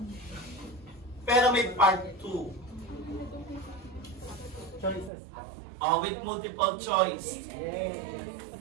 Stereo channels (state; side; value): drops out; left; at 5.1 s